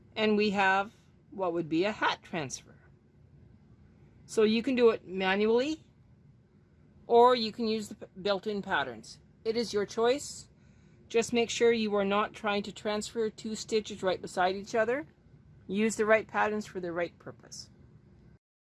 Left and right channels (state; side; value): identical; both; correlation 1.00